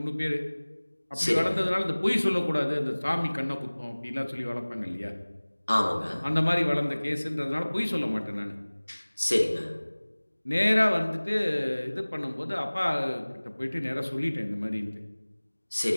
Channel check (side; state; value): both; inverted; correlation -1.00